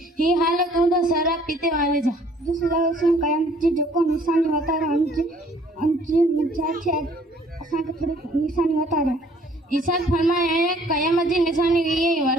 ही हालत होता शराब पीते वाले जा जिस लगा कयामत जी जो को निशानी बता रहा अंजी मजा छे असा के थोड़ी निशानी बता रहा ईसाद फरमाया है कयामत जी निशानी ये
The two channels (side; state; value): both; normal; correlation 0.58